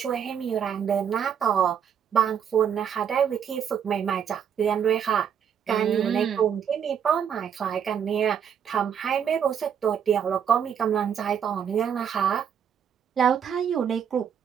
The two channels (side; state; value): left; quieter; 8.2 dB